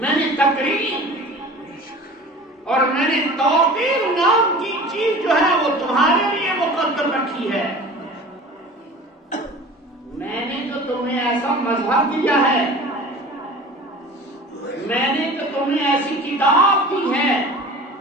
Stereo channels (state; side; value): normal; both; correlation 0.40